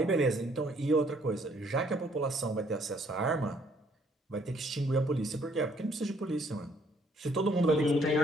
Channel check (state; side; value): normal; both; correlation 0.64